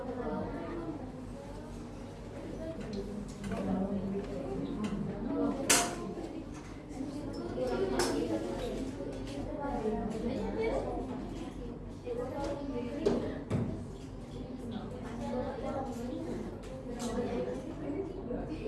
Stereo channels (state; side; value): identical; both; correlation 1.00